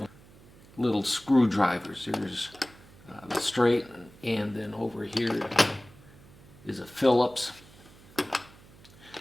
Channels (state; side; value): noise; right; hum, 23 dB below the sound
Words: little screwdrivers. There's the straight, and then over here is a Phillips,